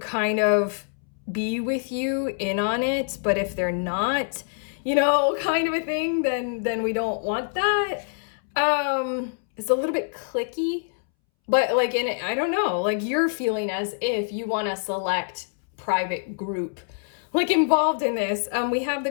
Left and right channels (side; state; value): right; silent; 62 dB below the other